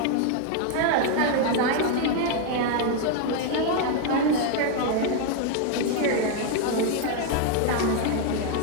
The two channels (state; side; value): different; both; correlation 0.00